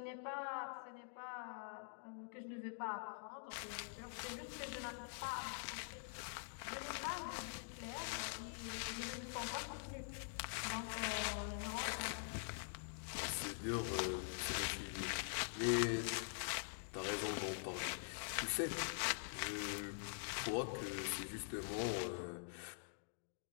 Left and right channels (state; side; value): silent; right; digital silence